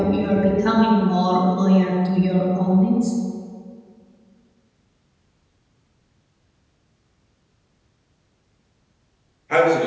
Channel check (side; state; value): both; identical; correlation 1.00